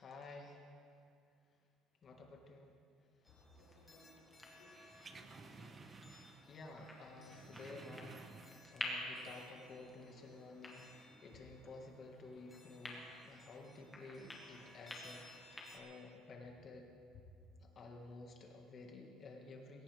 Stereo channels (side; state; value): both; normal; correlation 0.71